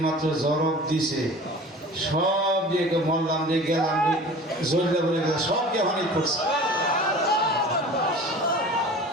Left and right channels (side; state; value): both; normal; correlation 0.41